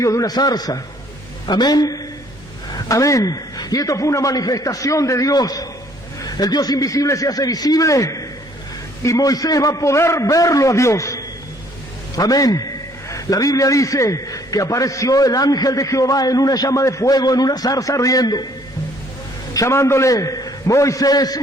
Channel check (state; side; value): normal; both; correlation 0.61